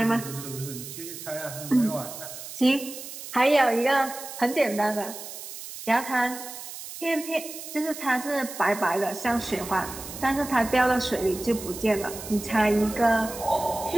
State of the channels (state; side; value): noise; right; hiss, 11 dB below the sound